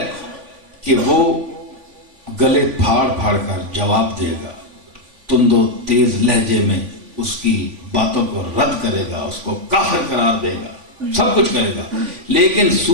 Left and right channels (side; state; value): left; late; 3.5 ms